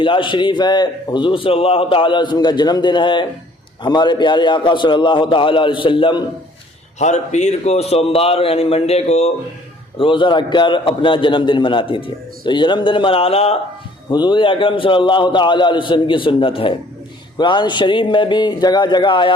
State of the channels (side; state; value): both; normal; correlation 0.58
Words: شریف ہے۔ حضور صلی اللہ تعالیٰ علیہ وسلم کا جنم دن ہے۔ ہمارے پیارے آقا صلی اللہ تعالیٰ علیہ وسلم ہر پیر کو سوموار یعنی منڈے کو روزہ رکھ کر اپنا جنم دن مناتے تھے۔ تو یہ جنم دن منانا حضور اکرم صلی اللہ تعالیٰ علیہ وسلم کی سنت ہے۔ قرآن شریف میں بھی جگہ جگہ